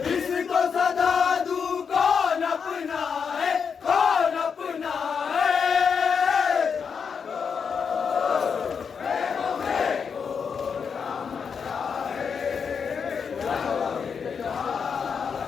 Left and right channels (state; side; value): quieter; right; 6.3 dB